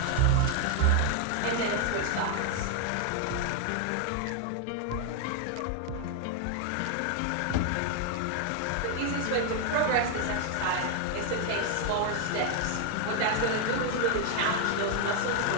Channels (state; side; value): different; both; correlation 0.00